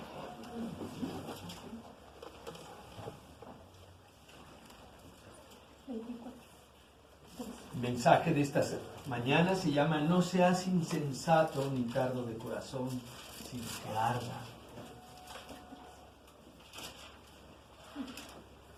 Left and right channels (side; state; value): both; identical; correlation 1.00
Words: El mensaje de esta mañana se llama: no seas insensato ni tardo de corazón, sino que arda.